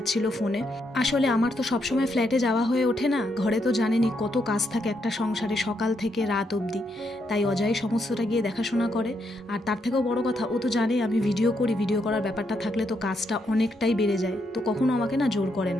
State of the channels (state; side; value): normal; both; correlation 0.78